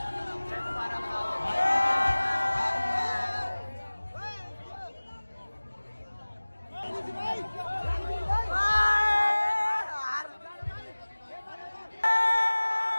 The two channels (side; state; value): both; inverted; correlation -1.00